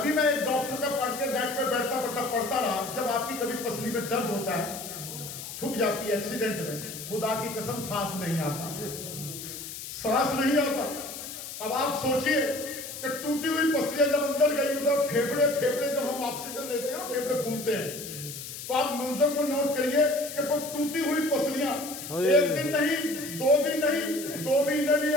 میں ایک ڈاکٹر کا پڑھ کے بیٹھ پہ بیٹھتا پڑھتا رہا, جب آپ کی کبھی پسلی میں درد ہوتا ہے, ٹھک جاتی ہے ایکسیڈنٹ میں, خدا کی قسم سانس نہیں آتا, سانس نہیں آتا. اب آپ سوچئے کہ ٹوٹی ہوئی پسلیاں جب اندر گئی ادھر پھیپڑے جب ہم آکسیجن لیتے ہیں نا پھیپڑے پھولتے ہیں, تو آپ منظر کو نوٹ کریے کہ ٹوٹی ہوئی پسلیاں ایک دن نہیں, 2 دن نہیں, 2 مہینے بھی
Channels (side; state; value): left; noise; hiss, 10 dB below the sound